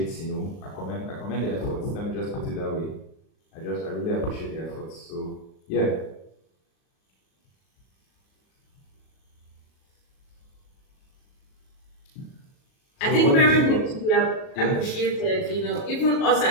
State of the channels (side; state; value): right; late; 37 ms